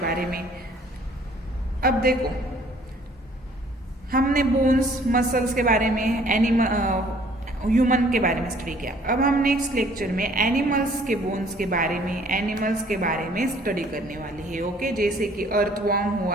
में। अब देखो, हमने बोन्स मसल्स के बारे में ह्यूमन के बारे में स्टडी किया। अब हम नेक्स्ट लेक्चर में एनिमल्स के बोन्स के बारे में एनिमल्स के बारे में स्टडी करने वाले हैं। ओके, जैसे कि अर्थवर्म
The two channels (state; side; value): normal; both; correlation 0.58